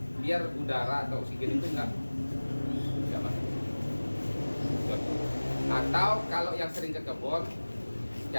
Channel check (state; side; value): inverted; both; correlation -1.00